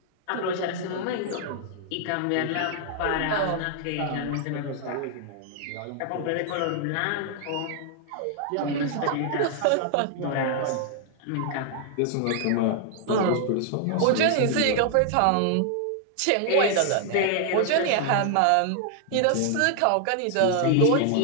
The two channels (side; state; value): both; different; correlation 0.00